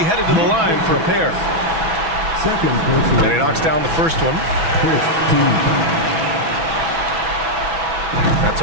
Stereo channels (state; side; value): late; left; 6.1 ms